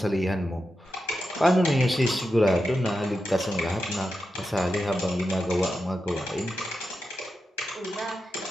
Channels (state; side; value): normal; both; correlation 0.89